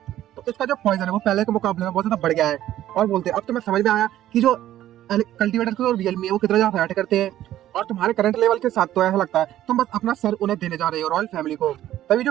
तो इसका जो पॉइजन है वो पहले के मुकाबले में बहुत ज्यादा बढ़ गया है, और बोलते हैं अब तुम्हें समझ में आया कि जो कल्टीवेटर और रियल में वो कितना ज्यादा फाइट करते हैं और तुम्हारे करंट लेवल के साथ तो ऐसा लगता है तुम बस अपना सर उन्हें देने जा रहे हो रॉयल फैमिली को। तभी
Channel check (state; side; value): quieter; left; 13.0 dB